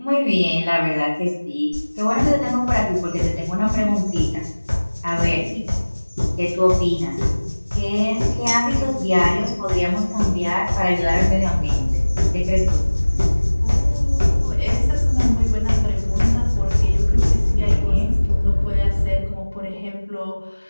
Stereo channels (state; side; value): inverted; both; correlation -1.00